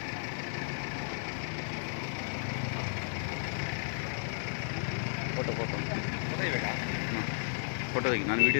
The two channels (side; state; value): right; silent; digital silence